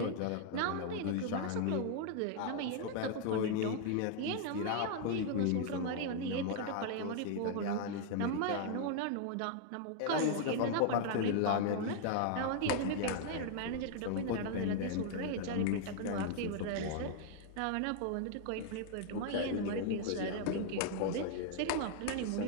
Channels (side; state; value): both; different; correlation 0.00